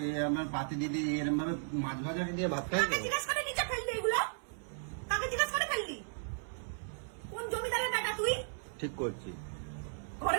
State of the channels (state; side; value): silent; left; 54 dB below the other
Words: আমার পাতি দিদি এরম ভাবে মাছ ভাজা দিয়ে ভাত খাই? কাকে জিজ্ঞেস করে নিচে ফেললি এগুলো? কাকে জিজ্ঞেস করে ফেললি? কোন জমিদারের বেটা তুই? ঠিক করছি, ঘরে